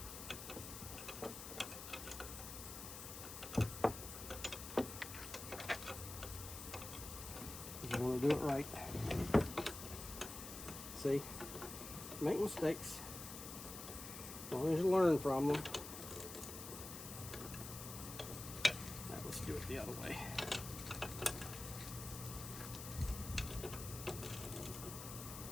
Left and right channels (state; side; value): noise; left; hiss, 9 dB below the sound